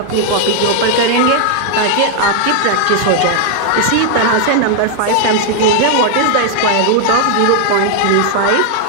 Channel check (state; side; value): different; both; correlation 0.00